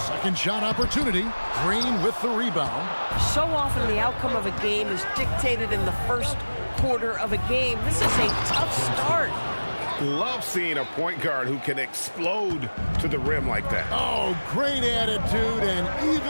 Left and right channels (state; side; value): inverted; both; correlation -1.00